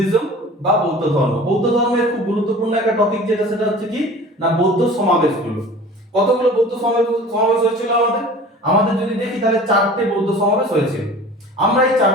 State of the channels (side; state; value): both; normal; correlation 0.42